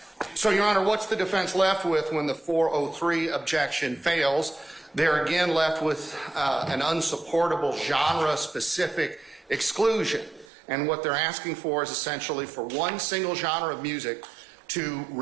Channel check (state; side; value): drops out; left; at 10.5 s